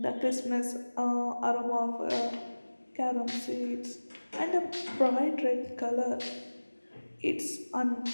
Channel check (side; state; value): both; inverted; correlation -1.00